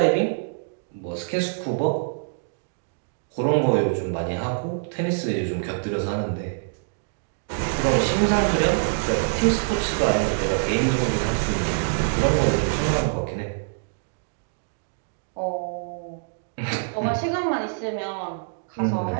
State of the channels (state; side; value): silent; left; digital silence